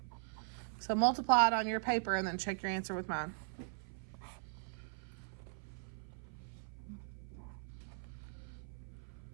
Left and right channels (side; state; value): left; silent; 51 dB below the other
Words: So multiply it on your paper and then check your answer with mine.